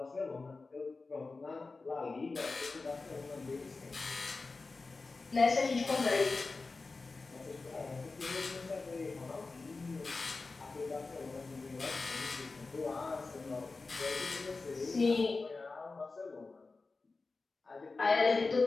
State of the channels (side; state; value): right; quieter; 3.8 dB